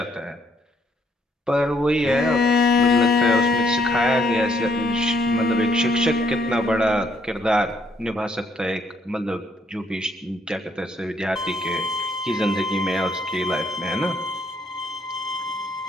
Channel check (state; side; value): normal; both; correlation 0.68